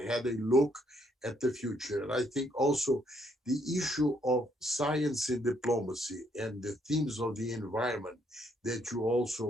a look at the future. And I think also the issue of science and diplomacy and the themes of the environment that you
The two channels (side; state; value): both; normal; correlation 0.71